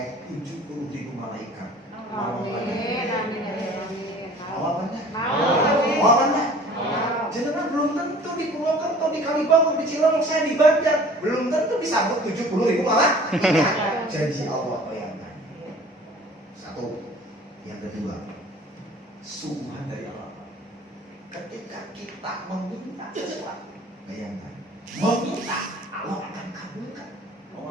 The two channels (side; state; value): both; normal; correlation 0.48